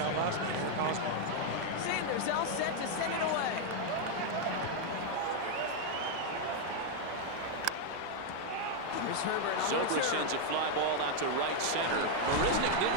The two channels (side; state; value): both; different; correlation 0.00